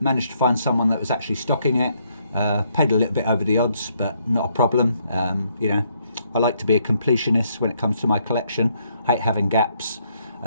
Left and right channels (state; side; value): inverted; both; correlation -0.72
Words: to find someone that was actually stocking it. Paid a little bit over the odds, but not a problem. You know, I like to be a completionist when it comes to my collection. I hate having gaps.